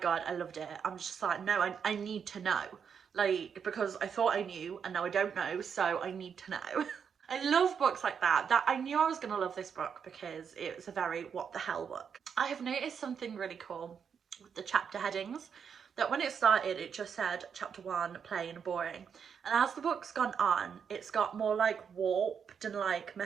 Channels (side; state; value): left; quieter; 7.0 dB